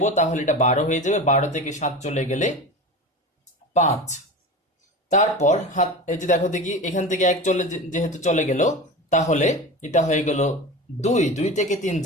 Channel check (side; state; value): both; normal; correlation 0.30